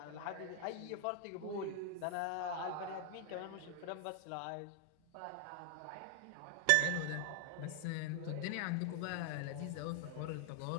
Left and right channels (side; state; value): both; different; correlation 0.00